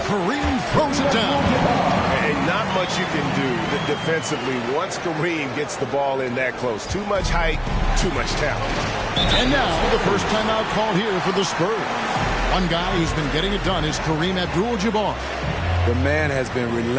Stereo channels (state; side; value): identical; both; correlation 1.00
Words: Kareem throws it down. And not much you can do defensively once Kareem gets the ball in that close. Too much height, too much talent. And now the first timeout called here for the Spurs. One guy who's been getting it done is Kareem Abdul-Jabbar. The man has been